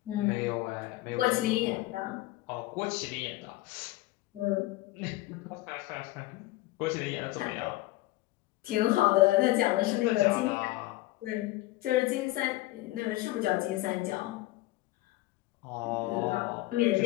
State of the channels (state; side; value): quieter; right; 18.3 dB